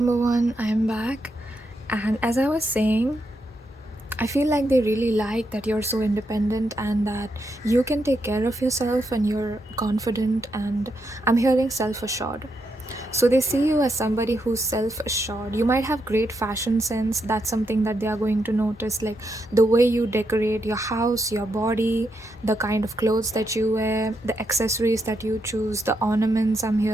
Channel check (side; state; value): both; normal; correlation 0.81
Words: one, I'm back. And as I was saying, I feel like they really like that you're so independent and that you can take care of yourself and you're confident, and I'm hearing self-assured. So they see you as somebody who's self-assured. You might have great fashion sense. That's something that they are going to notice, like the way you decorate your house, your body, the kind of clothes that you wear, the accessories that you choose, the ornaments. I'm